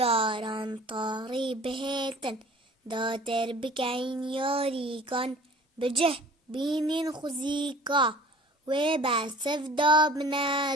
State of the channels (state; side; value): normal; both; correlation 0.46